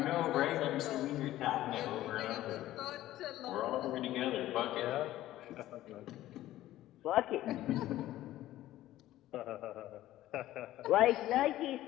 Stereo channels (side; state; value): right; quieter; 14.6 dB